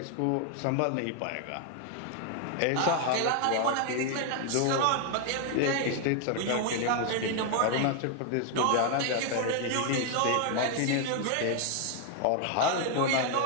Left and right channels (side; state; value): both; different; correlation 0.00